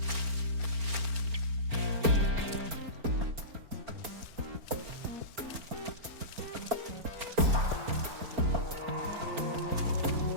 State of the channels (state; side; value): late; left; 4.4 ms